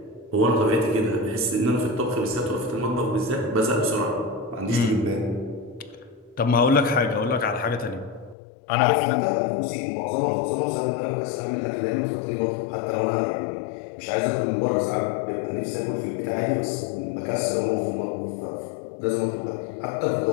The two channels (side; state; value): right; drops out; at 8.3 s